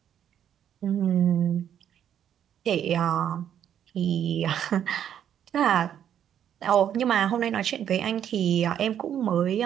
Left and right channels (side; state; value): left; quieter; 9.7 dB